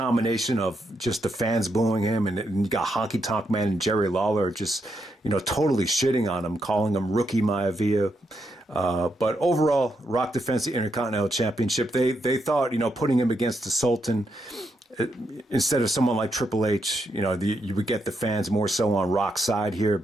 of just the fans booing him, and you got Honky Tonk Man and Jerry Lawler just totally shitting on him, calling him Rookie Maivia. But overall, Rock defends the Intercontinental Championship. They thought putting him against the Sultan instead of someone like Triple H, you would get the fans more so on Rock's side here,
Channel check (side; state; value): both; normal; correlation 0.81